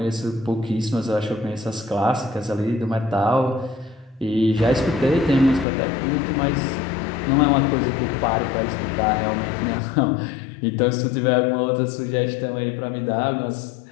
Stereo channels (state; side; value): drops out; right; at 5.7 s